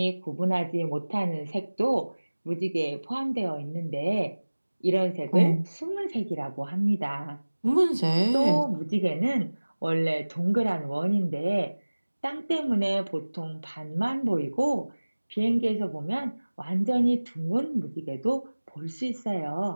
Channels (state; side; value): inverted; both; correlation -1.00